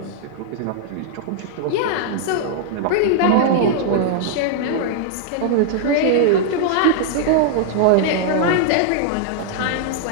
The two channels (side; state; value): both; different; correlation -0.01